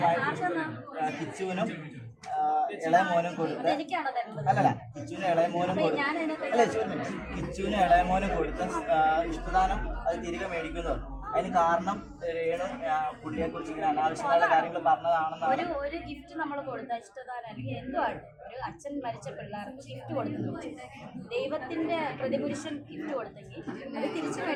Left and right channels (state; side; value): identical; both; correlation 1.00